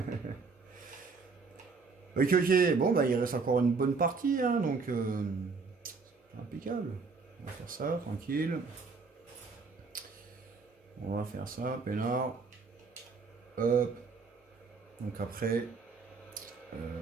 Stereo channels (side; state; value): left; quieter; 4.7 dB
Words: Ok. Bon, bah, il reste encore une bonne partie, hein, donc impeccable. On va faire ça, tranquille. On va faire ça, peinard. Hop. Donc après, euh,